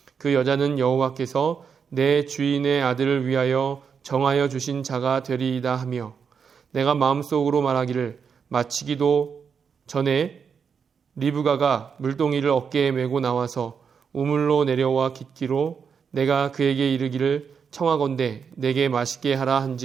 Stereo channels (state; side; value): quieter; left; 6.5 dB